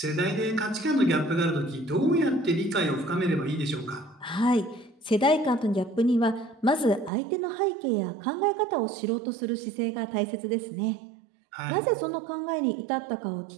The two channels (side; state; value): left; drops out; at 7.1 s